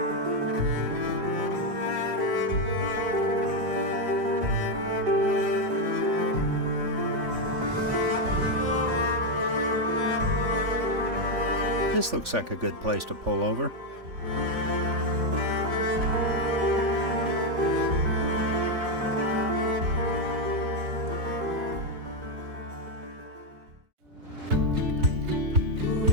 This looks like a good place to pull over.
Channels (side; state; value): left; late; 3.5 ms